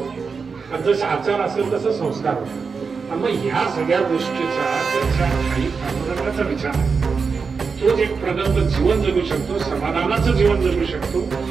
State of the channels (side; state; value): left; quieter; 5.2 dB